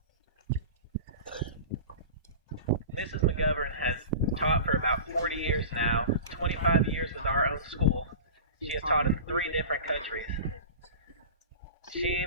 Mrs. McGovern has taught for about 40 years now, 25 years with our own school. She has taught in 3 different countries. She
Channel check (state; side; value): inverted; both; correlation -0.35